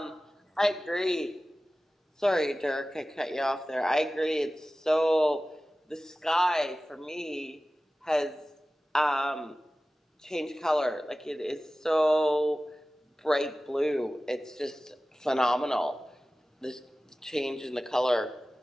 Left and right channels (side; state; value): both; normal; correlation 0.96